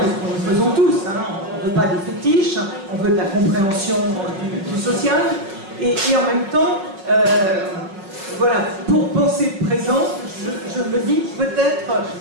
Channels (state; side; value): late; left; 5.4 ms